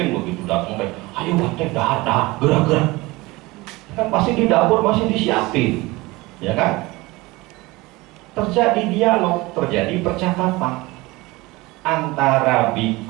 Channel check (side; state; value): left; quieter; 21.7 dB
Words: begitu datang kayak, ayo Bante, dahar, gerak. Kan pasti di dapur masih disiapin, ya kan? Terjadi dialog, terjadi percakapan antara